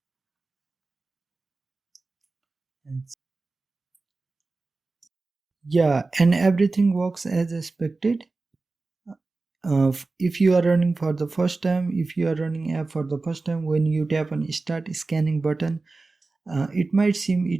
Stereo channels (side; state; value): left; quieter; 3.6 dB